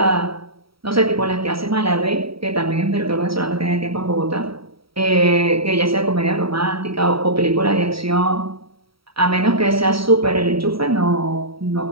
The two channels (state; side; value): late; left; 0.75 ms